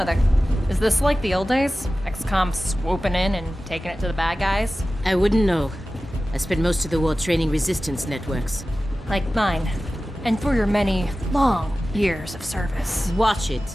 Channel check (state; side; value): normal; both; correlation 0.96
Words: Is this like the old days? XCOM swooping in and taking it to the bad guys? I wouldn't know. I spent most of the war training resistance networks. Like mine. And for your many, long years of service. Watch it.